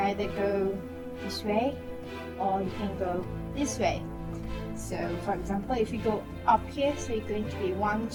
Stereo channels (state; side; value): identical; both; correlation 1.00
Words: go this way or you can go this way. So for example, if you go up here, so you're going to be 1,